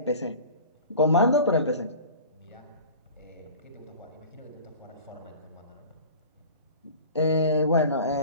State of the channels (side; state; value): both; inverted; correlation -0.40